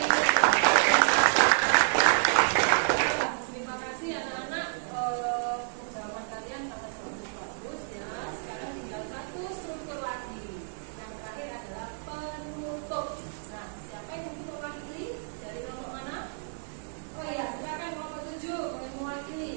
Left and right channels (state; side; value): silent; left; digital silence